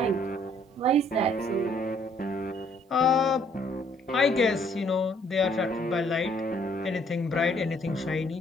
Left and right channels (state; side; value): normal; both; correlation 0.64